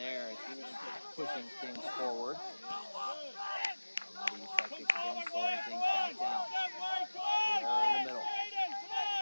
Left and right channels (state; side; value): inverted; both; correlation -1.00